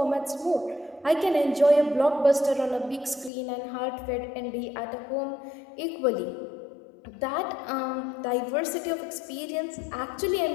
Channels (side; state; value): right; drops out; at 3.3 s